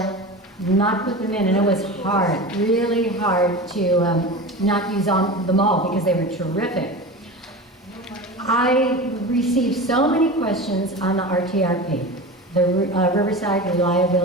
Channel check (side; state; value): both; normal; correlation 0.29